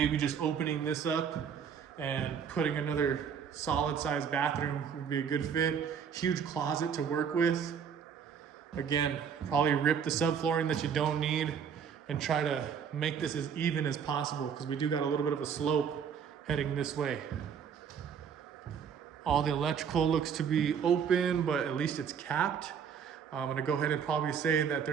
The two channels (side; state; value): left; quieter; 7.3 dB